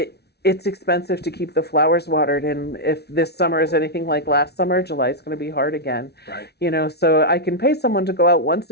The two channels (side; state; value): right; late; 0.48 ms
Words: It's expensive to keep the flowers watered, and if this summer is anything like last summer, July is going to be hard again. Right. So I can pay someone to go out once